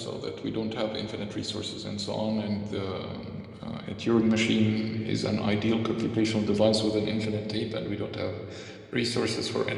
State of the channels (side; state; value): both; identical; correlation 1.00